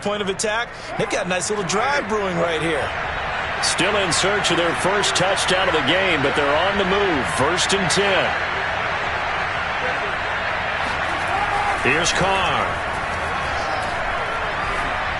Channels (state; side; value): identical; both; correlation 1.00